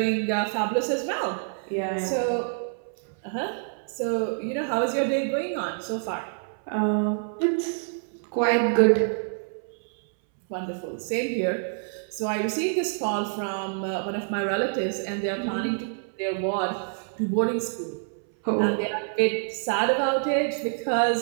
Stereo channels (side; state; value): left; silent; 60 dB below the other